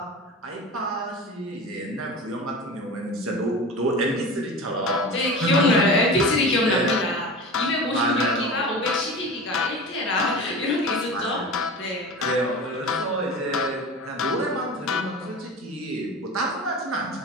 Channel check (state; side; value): normal; both; correlation 0.32